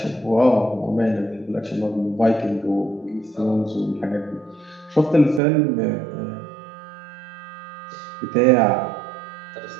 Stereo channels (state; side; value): drops out; left; at 5.4 s